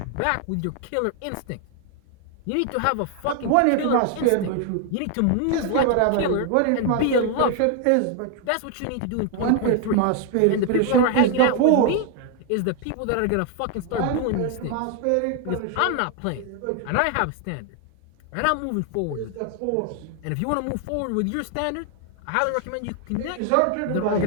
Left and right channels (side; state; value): both; different; correlation 0.00